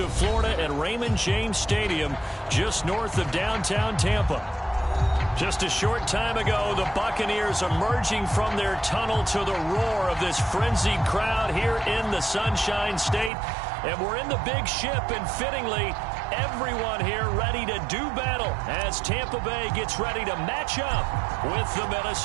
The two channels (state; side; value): drops out; left; at 13.3 s